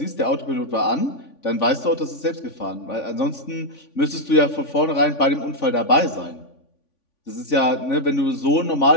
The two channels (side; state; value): right; late; 3.5 ms